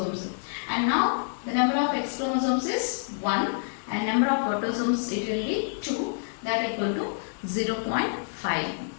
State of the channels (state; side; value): silent; right; digital silence